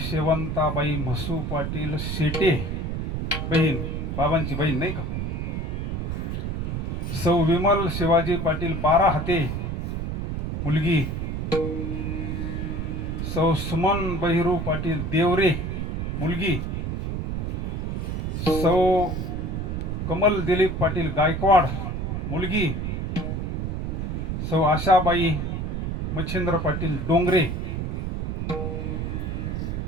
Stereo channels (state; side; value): noise; right; rumble, 2 dB below the sound